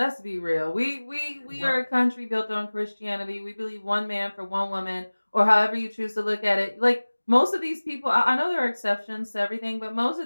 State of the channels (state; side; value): inverted; both; correlation -1.00